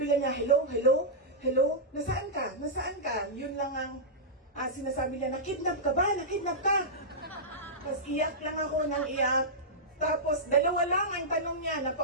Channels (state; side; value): normal; both; correlation -0.12